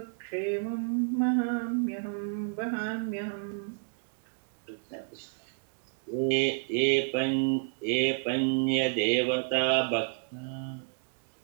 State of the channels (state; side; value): silent; left; digital silence